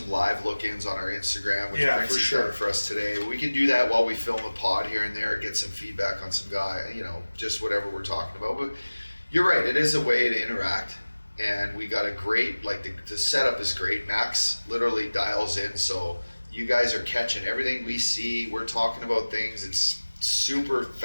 live look-ins on our Instagram, which for sure for us today. We can do that while we film a pod here and there, get some feedback on some guy, just whatever we're talking about. But you're right, it is a way to interact. And we got a great, the setup is great. Max literally dials in, so you guys are catching everything we see. We're talking about things. It's super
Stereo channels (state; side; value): inverted; both; correlation -1.00